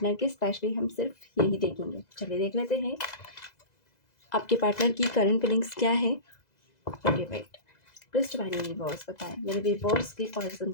की, स्पेशली हम सिर्फ यही देखेंगे। चलिए देख लेते हैं आपके पार्टनर की करंट फीलिंग्स क्या है। Okay wait, please divine universe बताएं मेरे व्यूअर्स के पर्सन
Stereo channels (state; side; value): late; right; 2.0 ms